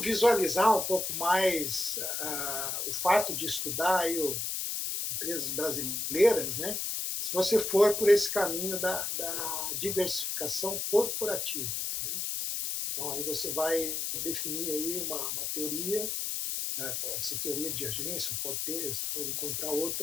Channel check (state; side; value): noise; left; hiss, 2 dB below the sound